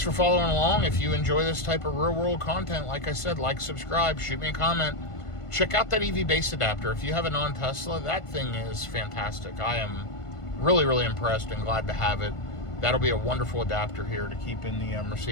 for following along. If you enjoy this type of real-world content, like I said, like, subscribe, shoot me a comment. Check out that EvBase adapter. If you have a non-Tesla, that thing is fantastic. I am Really, really impressed and glad to have it. That'll be a wonderful adapter here to keep in the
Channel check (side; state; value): right; late; 1.5 ms